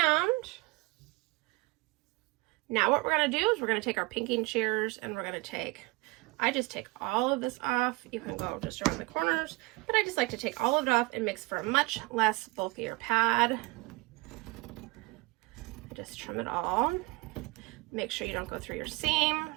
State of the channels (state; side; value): quieter; left; 24.0 dB